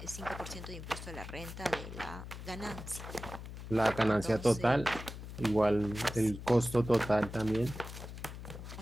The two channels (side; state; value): left; noise; hum, 10 dB below the sound